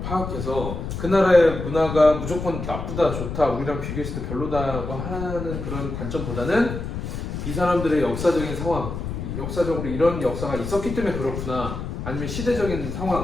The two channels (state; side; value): noise; left; rumble, 6 dB below the sound